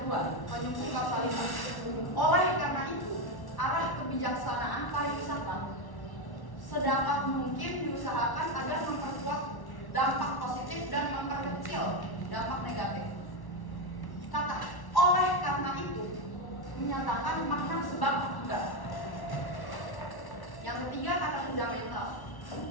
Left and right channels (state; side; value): late; right; 1.1 ms